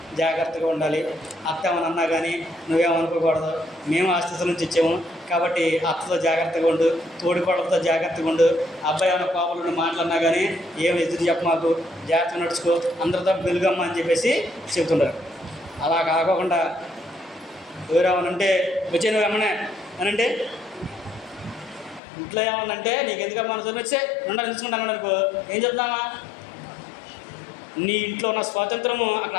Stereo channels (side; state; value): right; drops out; at 22.0 s